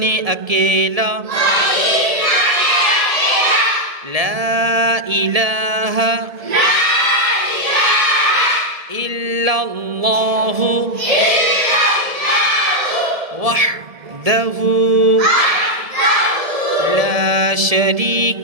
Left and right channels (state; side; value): late; left; 1.7 ms